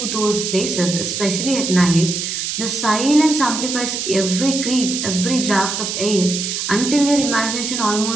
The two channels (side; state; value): right; noise; hiss, 3 dB below the sound